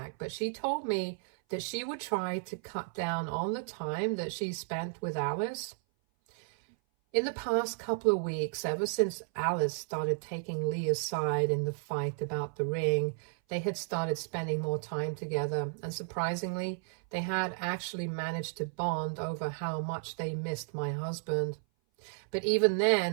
but she told me that she would try to cut down on the time that she spent with Alice. In the past couple of weeks, ever since Alice started taking Leah's side in the fight about the ring, they had started spending more time together, and surprisingly, they had actually managed to bond over how much they missed my husband. But even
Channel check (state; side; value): silent; left; 56 dB below the other